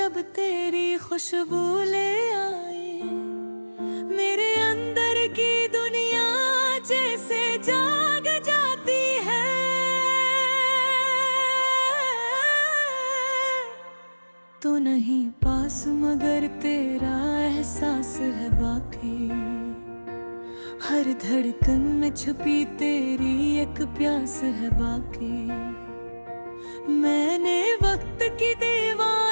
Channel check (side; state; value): both; inverted; correlation -1.00